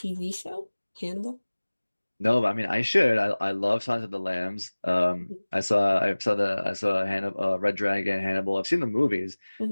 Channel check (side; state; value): both; inverted; correlation -1.00